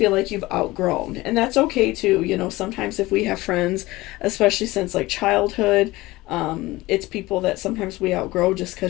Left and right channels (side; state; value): right; quieter; 19.5 dB